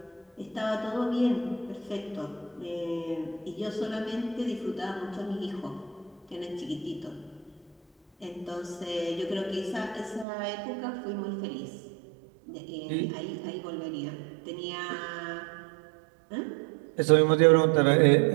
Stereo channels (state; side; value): drops out; left; at 10.2 s